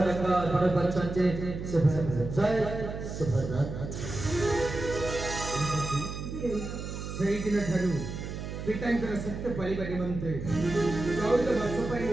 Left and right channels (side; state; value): right; noise; hum, 7 dB below the sound